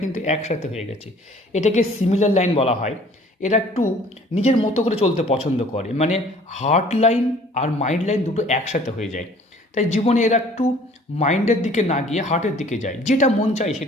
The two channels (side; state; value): both; normal; correlation 0.53